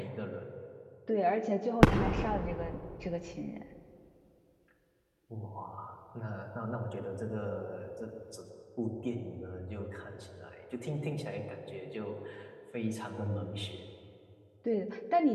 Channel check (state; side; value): identical; both; correlation 1.00